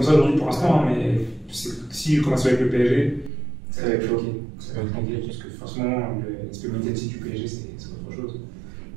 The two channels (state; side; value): drops out; left; at 3.3 s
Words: ça aujourd'hui pour l'instant, mais si je commence avec le PSG, ça va être bloqué. Ça va être compliqué parce que forcément, l'aspect médiatique du PSG, c'est autre chose.